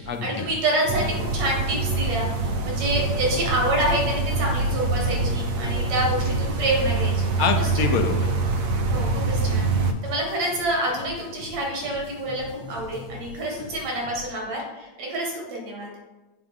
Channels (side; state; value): left; late; 8.7 ms